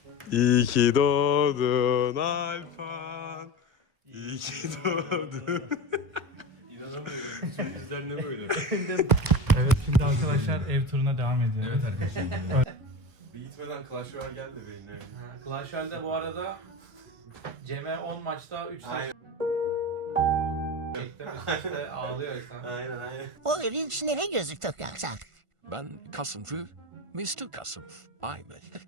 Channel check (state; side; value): late; left; 1.5 ms